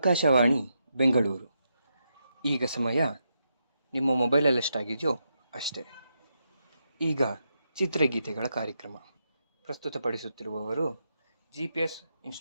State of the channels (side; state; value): both; inverted; correlation -0.83